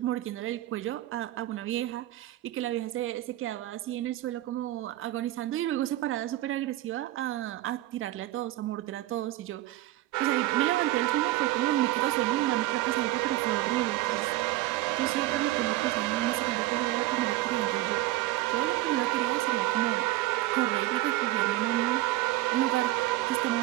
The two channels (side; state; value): left; quieter; 16.4 dB